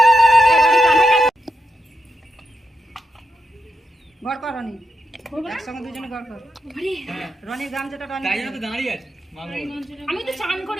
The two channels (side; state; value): both; normal; correlation 0.85